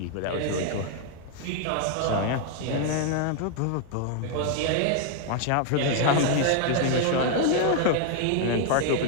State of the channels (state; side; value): different; both; correlation 0.00